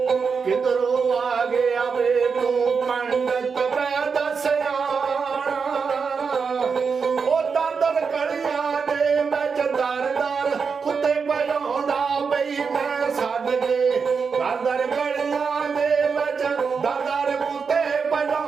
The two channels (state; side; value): quieter; left; 5.6 dB